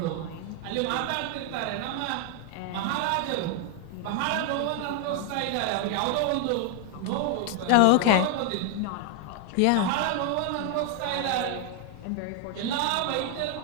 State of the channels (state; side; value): different; both; correlation 0.00